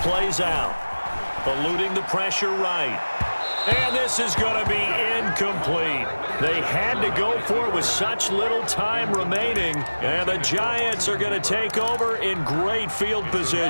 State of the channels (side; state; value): both; inverted; correlation -1.00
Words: plays out. Eluding the pressure right. And this is going to be incomplete. They had to go for it with such little time remaining. And the Giants are going to take over in great field